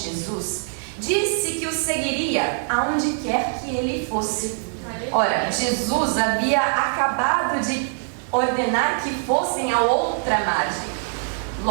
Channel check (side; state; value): left; silent; digital silence